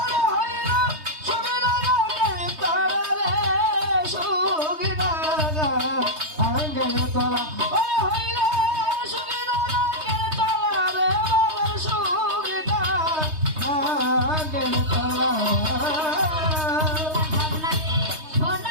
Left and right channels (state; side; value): late; left; 3.2 ms